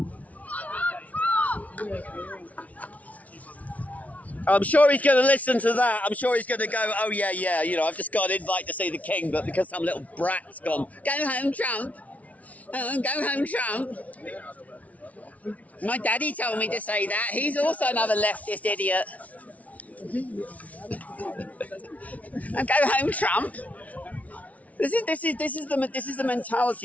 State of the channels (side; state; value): right; late; 0.069 ms